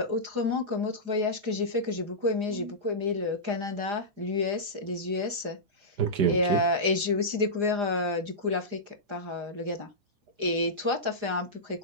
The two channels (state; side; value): late; left; 4.9 ms